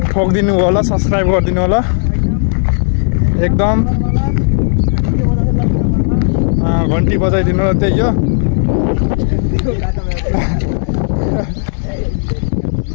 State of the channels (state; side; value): silent; right; 70 dB below the other